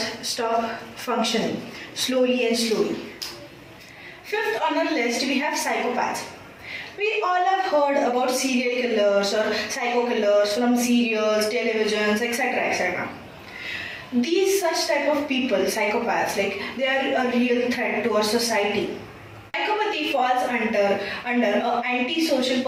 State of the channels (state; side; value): identical; both; correlation 1.00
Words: stop functioning slowly and slowly. Fifth on our list, we have psychopaths. We all have heard about serial killers or psycho killers from serials, televisions, etc. etc. These such type of people, psychopaths, they are a real threat to our society. Psychopathy falls under a antisocial